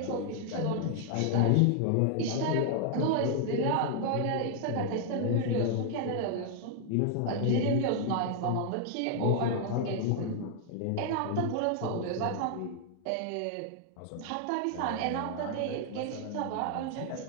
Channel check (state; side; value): different; both; correlation 0.00